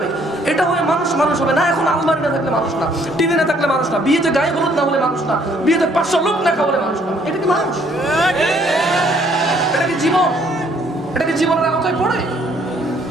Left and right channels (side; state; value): both; normal; correlation 0.64